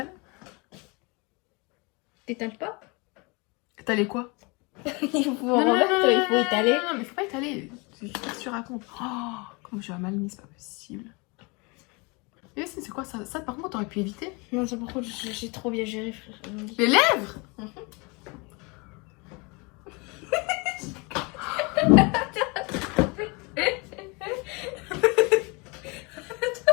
T'étales pas? T'allais quoi? Il faut remettre, il faut étaler. Non, mais faut pas étaler. Je sais pas ce que tu racontes. Oh, comment je vais mal mis, c'est pas possible. Et c'est quoi ça? Ça, par contre, t'aurais pu éviter. Non, ça par contre, j'ai trop bien géré, frère. Les lèvres.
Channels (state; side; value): quieter; right; 28.9 dB